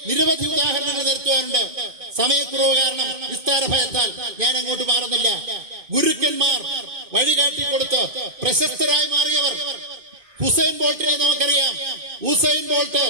നിരവധി ഉദാഹരണങ്ങൾ നിരത്തുവാനുണ്ട്. സമയക്കുറവ് കാരണം വിസ്താര ഭയത്താൽ ഞാൻ അങ്ങോട്ട് മാറുന്നില്ല. ഗുരുക്കന്മാർ വഴികാട്ടിക്കൊടുത്ത് പ്രശസ്തരായി മാറിയവർ. ഹുസൈൻ ബോൾട്ടിനെ നമുക്കറിയാം. ഹുസൈൻ ബോൾട്ട്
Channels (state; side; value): late; left; 2.2 ms